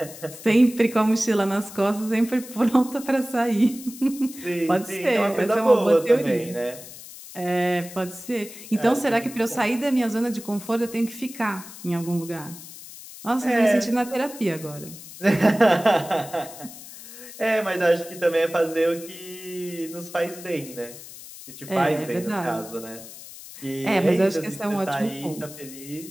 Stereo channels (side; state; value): left; noise; hiss, 15 dB below the sound